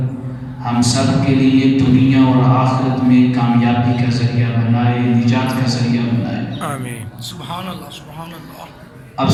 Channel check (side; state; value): both; identical; correlation 1.00